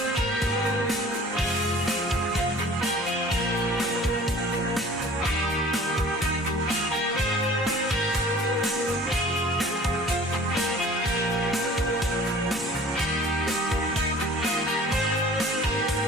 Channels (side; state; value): both; normal; correlation 0.47